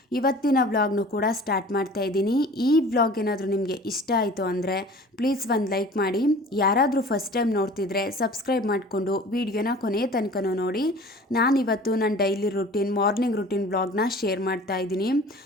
ಇವತ್ತಿನ ವ್ಲಾಗ್ನು ಕೂಡ ಸ್ಟಾರ್ಟ್ ಮಾಡ್ತಾ ಇದ್ದೀನಿ. ಈ ವ್ಲಾಗ್ ಏನಾದರೂ ನಿಮಗೆ ಇಷ್ಟ ಆಯಿತು ಅಂದರೆ ಪ್ಲೀಸ್ ಒಂದು ಲೈಕ್ ಮಾಡಿ. ಯಾರಾದರೂ ಫಸ್ಟ್ ಟೈಮ್ ನೋಡ್ತಿದ್ರೆ ಸಬ್ಸ್ಕ್ರೈಬ್ ಮಾಡಿಕೊಂಡು ವಿಡಿಯೋನ ಕೊನೆಯ ತನಕನೂ ನೋಡಿ. ನಾನಿವತ್ತು ನನ್ನ ಡೈಲಿ ರುಟೀನ್ ಮಾರ್ನಿಂಗ್ ರುಟೀನ್ ವ್ಲಾಗ್ನ ಶೇರ್ ಮಾಡ್ತಾ ಇದ್ದೀನಿ.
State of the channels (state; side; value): normal; both; correlation 0.44